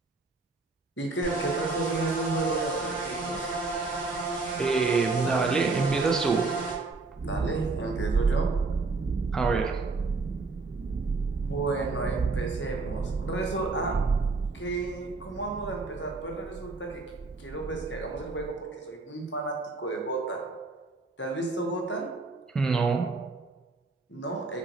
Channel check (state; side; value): quieter; left; 3.8 dB